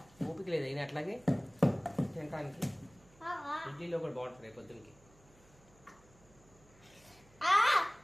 ఓపిక లేదు అయినా అట్లాగే తినడానికి. ఇడ్లీలో కూడా బాగుంటుంది రేపు పొద్దున్నకి.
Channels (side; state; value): right; noise; hum, 27 dB below the sound